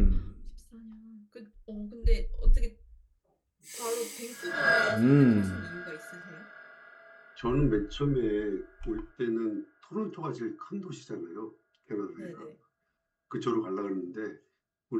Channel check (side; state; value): both; identical; correlation 1.00